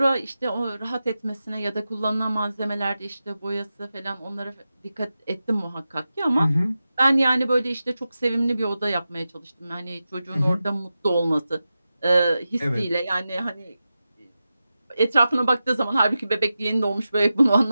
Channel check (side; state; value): both; inverted; correlation -0.92